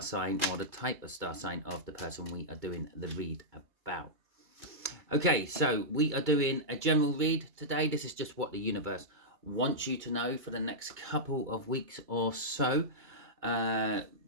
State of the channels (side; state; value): left; late; 2.3 ms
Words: sign or the type of star sign of the person we are doing the read about. Okay, so we are doing a general read today. This is just what the universe wants you to know for the next couple of weeks or so.